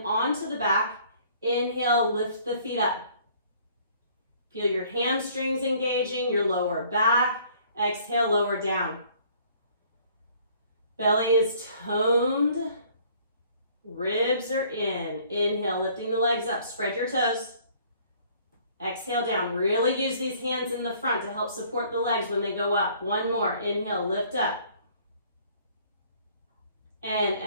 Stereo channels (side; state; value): both; inverted; correlation -0.58